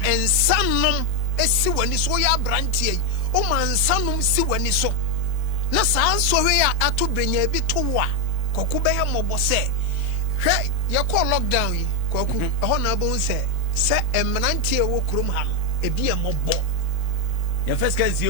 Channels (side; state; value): both; normal; correlation 0.04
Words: ensanom esi wani so ya branch yei o ma ensanom si wani so na saa nsohwe ya ato brenya bi to wa koku be he mobo se hwe ye call lockdown yi koku ho na bo se emnantie wo krom ha no ebi e mobo ye first can see